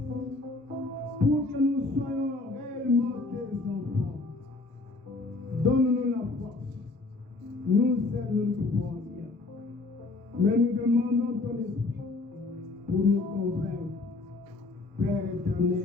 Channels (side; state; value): right; quieter; 3.3 dB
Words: pour que nous soyons réellement tes enfants. Donne-nous la force. Nous seuls nous ne pouvons rien. Mais nous demandons ton esprit pour nous convaincre. Père